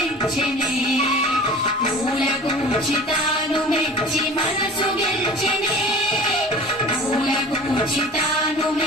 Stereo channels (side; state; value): both; normal; correlation 0.40